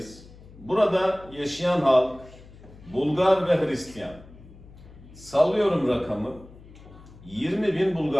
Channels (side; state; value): left; noise; hum, 20 dB below the sound